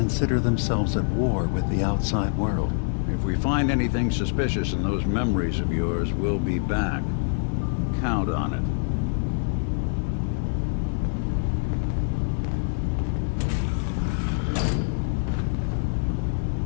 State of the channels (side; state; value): right; silent; digital silence